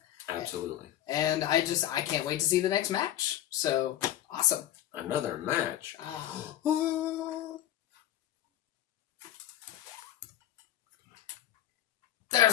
Absolutely. And I can't wait to see the next match. So, awesome. Another match.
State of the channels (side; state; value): right; quieter; 12.5 dB